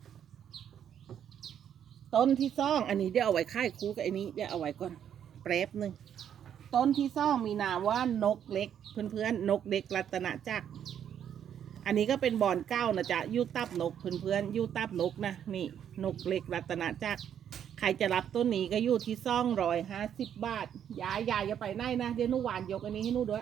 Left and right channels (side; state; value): left; quieter; 9.2 dB